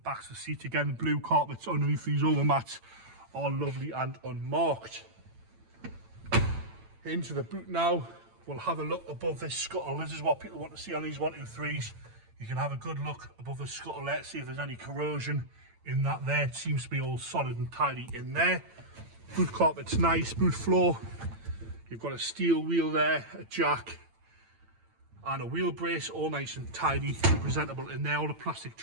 of the seat again, blue carpets underneath these overmats, all lovely and unmarked. Into the boot now. We'll have a look above this scuttle. This is what people want to see on these 123s. You can have a good look above the scuttle there, see if there's any corrosion in that there. It seems to be all solid and tidy in there. Boot carpet's nice, boot floor. You've got a steel wheel there, a jack, and a wheel brace, all nice and tidy, presentable in there. All the plastic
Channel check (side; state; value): left; late; 8.9 ms